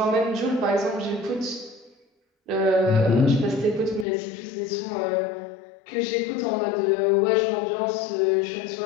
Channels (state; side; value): drops out; right; at 4.0 s